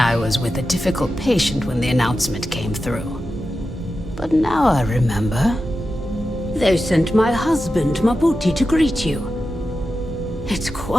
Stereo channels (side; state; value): both; normal; correlation 0.91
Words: was with a difficult patient when the announcement came through. But now I remember. They sent my husband, Mabuti, to greet you. It's